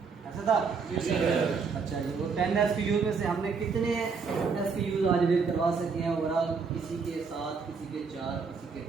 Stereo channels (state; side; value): quieter; left; 5.2 dB